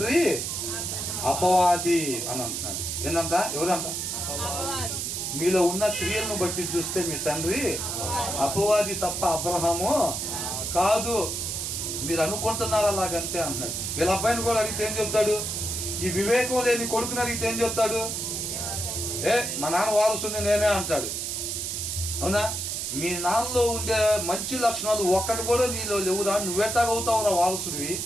అపవాది అని అంటున్నాడు. ఏంటంట? ఎవరంట? మీలో ఉన్న క్రియలను బట్టి చూస్తే మీ తండ్రి అపవాది తప్ప అబ్రహాము కాదు. మీరు అనుకుంటున్నారు అలాగంతే అంటున్నాడు. వీళ్ళ అబ్బాయిని కూడా అడిగితే ఏం చెప్తాడు? ఈ వివేకం లేని కొడుకుని అడిగితే ఏం చెప్తాడు? మా నాన్న వారసుని నేనే అంటాడు. అవునా? మీ నాన్నలో ఉండే మంచి లక్షణాలు ఒక్కటి కూడా నీలో లేవురా, నువ్వెట్టాగవుతావురా వారసుడివి?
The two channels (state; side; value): noise; right; hiss, 3 dB below the sound